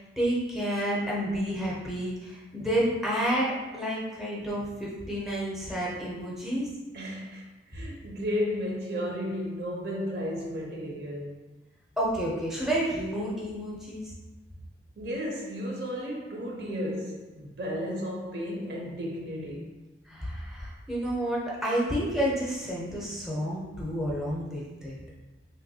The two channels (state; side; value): normal; both; correlation 0.57